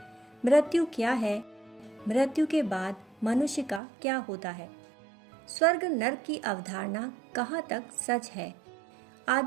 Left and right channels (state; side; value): drops out; left; at 3.8 s